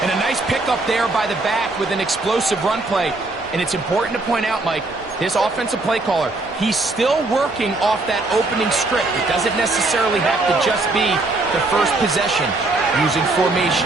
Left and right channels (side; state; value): left; quieter; 3.1 dB